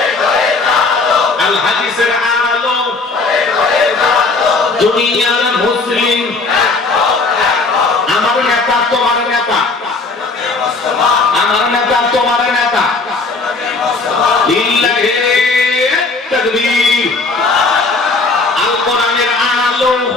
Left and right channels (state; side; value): quieter; right; 3.8 dB